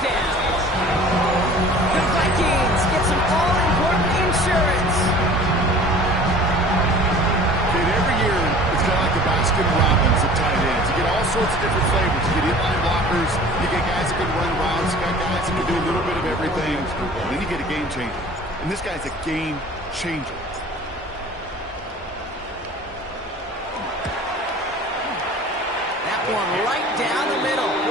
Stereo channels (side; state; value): both; normal; correlation 0.45